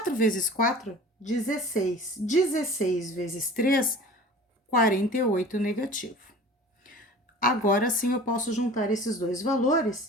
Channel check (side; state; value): both; normal; correlation 0.41